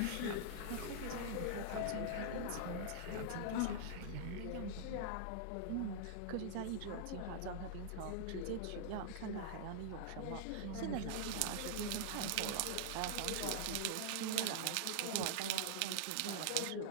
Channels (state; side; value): different; both; correlation -0.01